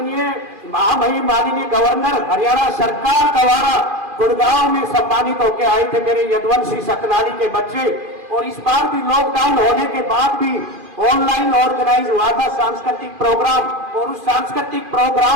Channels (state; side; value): late; left; 2.4 ms